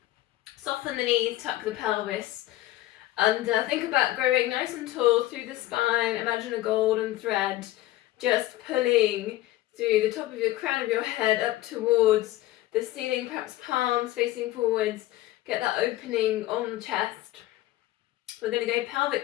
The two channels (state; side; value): quieter; right; 16.2 dB